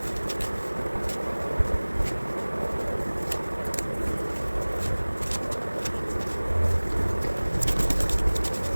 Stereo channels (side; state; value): both; inverted; correlation -1.00